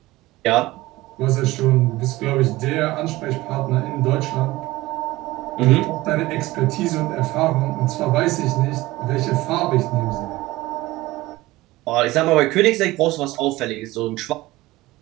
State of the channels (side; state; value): left; quieter; 18.8 dB